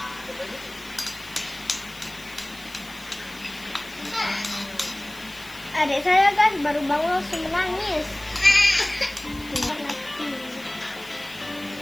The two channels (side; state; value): left; noise; hiss, 20 dB below the sound